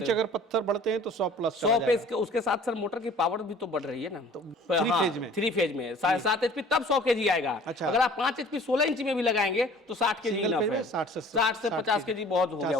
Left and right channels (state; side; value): normal; both; correlation 0.49